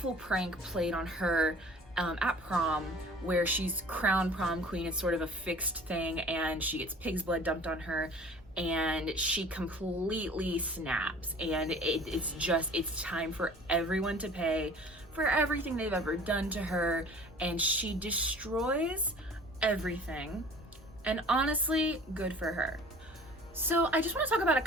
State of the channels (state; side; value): normal; both; correlation 0.47